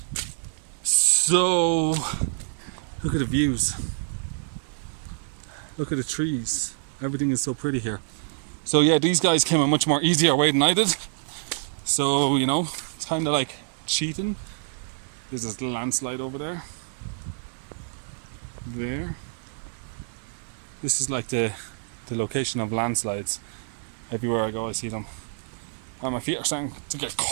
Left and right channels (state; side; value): silent; left; digital silence